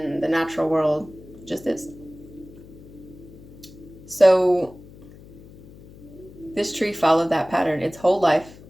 the natural world, just is. So this tree followed that pattern its whole life,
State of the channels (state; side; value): noise; left; hum, 20 dB below the sound